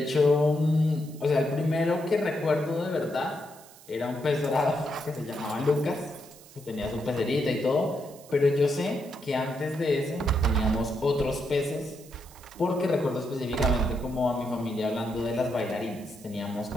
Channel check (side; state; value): right; noise; hiss, 22 dB below the sound